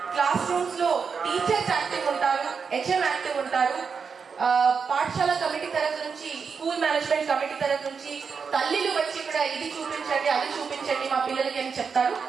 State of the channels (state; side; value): quieter; left; 5.8 dB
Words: క్లాస్ రూమ్స్ లో టీచర్స్ యాక్టివ్ ఉంటారు, హెచ్ఎం యాక్టివ్ ఉంటారు, పాఠశాల కమిటీ తరఫు నుంచి, స్కూల్ మేనేజ్మెంట్ కమిటీ తరఫు నుంచి తల్లిలు వచ్చి ఇక్కడ ఇది చూపించండి అది చూపించండి మా పిల్లలకి అని చెప్తారు.